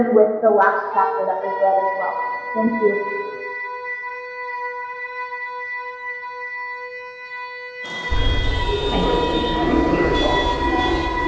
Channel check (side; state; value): both; identical; correlation 1.00